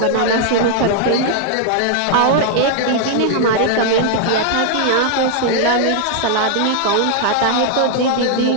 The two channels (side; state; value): both; different; correlation 0.00